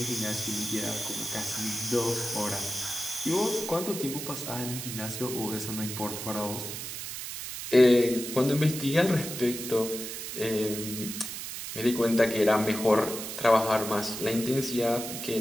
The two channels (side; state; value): right; noise; hiss, 7 dB below the sound